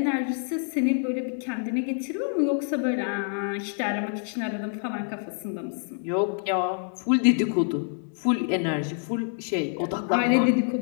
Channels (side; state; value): right; silent; 58 dB below the other